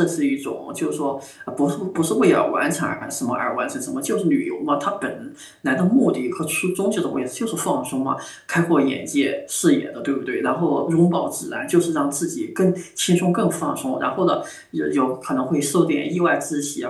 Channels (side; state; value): both; identical; correlation 1.00